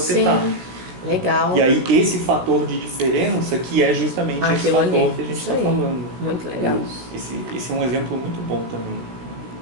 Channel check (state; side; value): late; left; 16 ms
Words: está. Legal. E aí esse fator de diferença que é justamente esse Aquilo fator ali. que a gente Isso está aí. falando. Muito legal. Esse é um exemplo muito bom também.